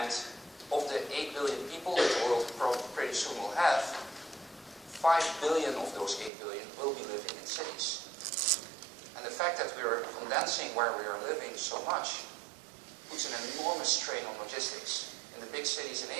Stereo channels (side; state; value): left; drops out; at 6.3 s